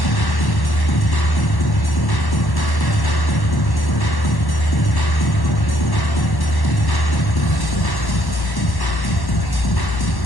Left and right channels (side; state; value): right; late; 1.1 ms